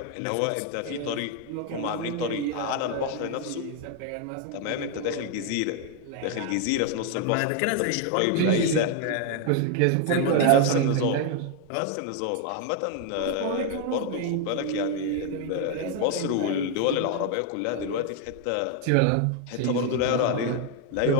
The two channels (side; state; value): both; different; correlation 0.00